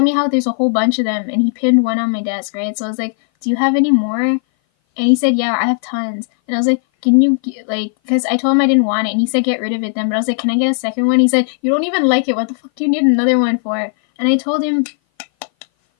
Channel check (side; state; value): right; silent; 58 dB below the other